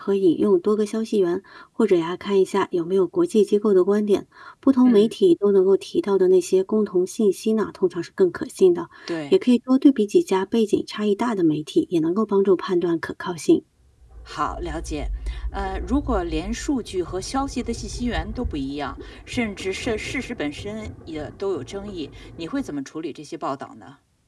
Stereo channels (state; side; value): identical; both; correlation 1.00